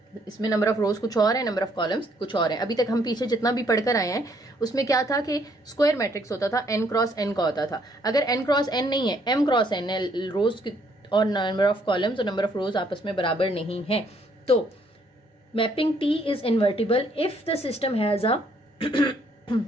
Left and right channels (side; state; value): both; normal; correlation 0.67